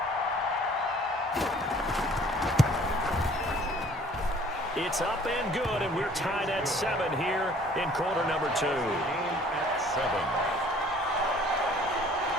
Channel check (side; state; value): both; normal; correlation 0.54